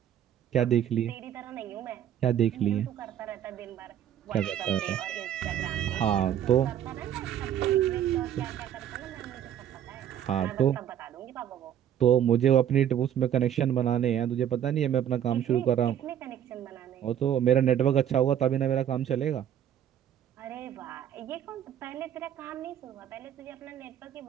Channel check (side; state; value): left; quieter; 10.2 dB